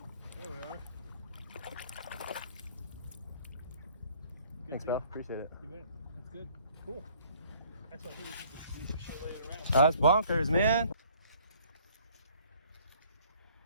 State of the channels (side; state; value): both; inverted; correlation -0.58